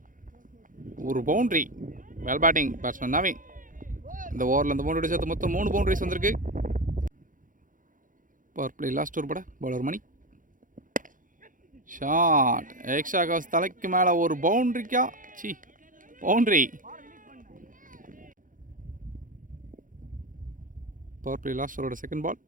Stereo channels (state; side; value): late; left; 0.39 ms